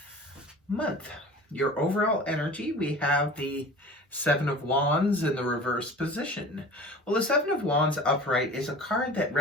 month. Your overall energy, we have the Seven of Wands in the reverse position. Well, the Seven of Wands upright is a card that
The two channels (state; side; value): normal; both; correlation 0.40